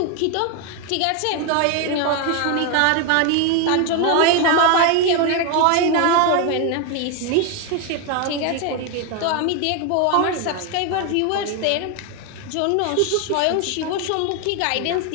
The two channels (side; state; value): both; different; correlation 0.01